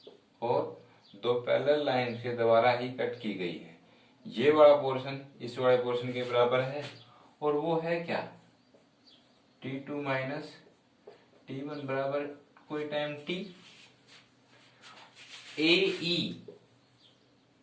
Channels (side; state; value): both; identical; correlation 1.00